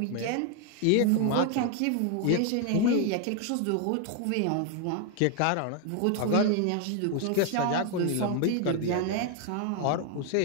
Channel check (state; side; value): different; both; correlation 0.00